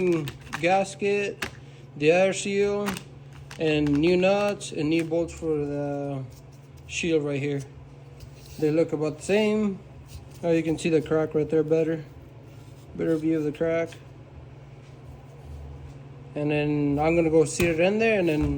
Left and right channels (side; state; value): both; identical; correlation 1.00